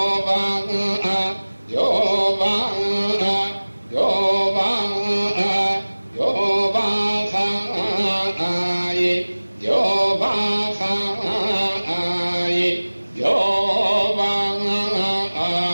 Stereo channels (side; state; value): both; inverted; correlation -1.00